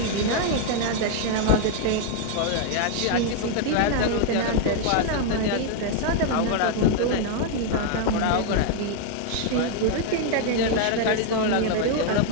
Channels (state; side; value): different; both; correlation 0.00